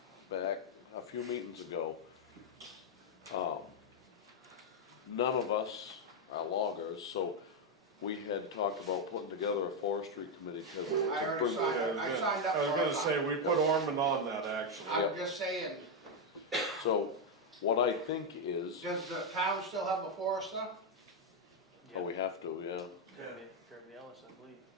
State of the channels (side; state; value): both; normal; correlation 0.02